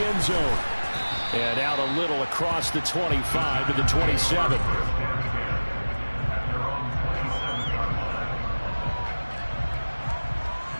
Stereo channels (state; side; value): inverted; both; correlation -1.00